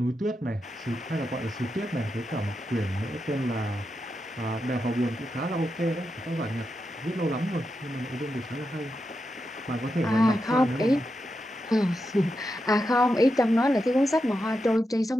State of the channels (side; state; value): both; normal; correlation 0.87